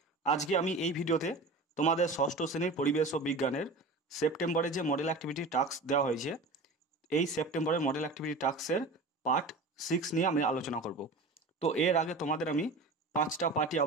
আজকে আমি এই ভিডিওতে তোমাদের ষষ্ঠ শ্রেণীর পরিবেশ ও বিজ্ঞানের সেপ্টেম্বরে যে মডেল অ্যাক্টিভিটি টাস্ক দেওয়া হয়েছে, এই সেপ্টেম্বরের মডেল অ্যাক্টিভিটি টাস্কের পার্ট 6 নিয়ে আমি আলোচনা করব। তো এর আগে তোমাদের আমি 5টা পার্টই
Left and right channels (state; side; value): quieter; left; 3.2 dB